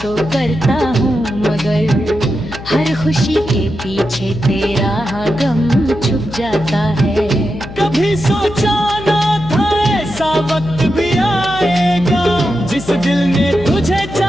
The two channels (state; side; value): noise; left; hum, 13 dB below the sound